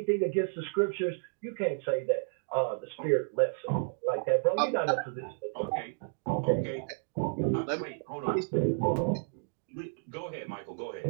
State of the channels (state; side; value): silent; left; digital silence